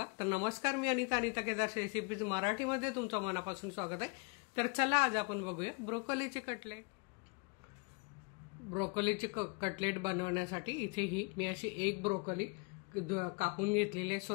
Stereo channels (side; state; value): right; quieter; 31.6 dB